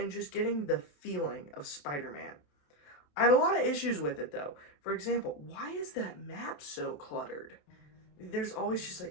just getting the feeling of Spider-Man. I had a lot of issues with it, though. For example, why is that map so cluttered? There's always just,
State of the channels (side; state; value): right; late; 27 ms